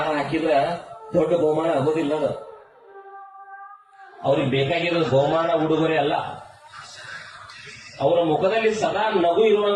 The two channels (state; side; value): identical; both; correlation 1.00